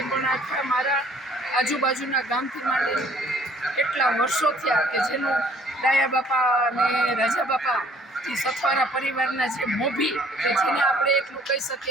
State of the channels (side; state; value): both; normal; correlation 0.58